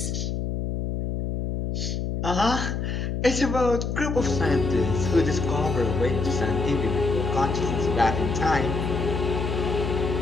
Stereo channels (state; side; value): noise; left; hum, 2 dB below the sound